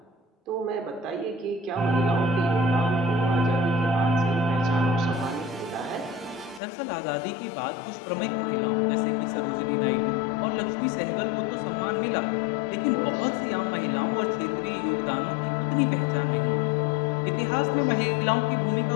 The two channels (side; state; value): right; drops out; at 6.6 s